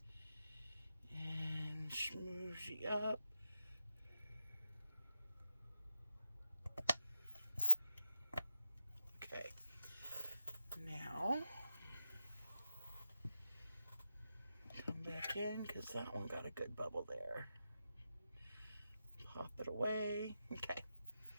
and smoothie up. Okay, now come back in because that one got a good bubble there. Pop it away. Okay,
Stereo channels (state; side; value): inverted; both; correlation -0.90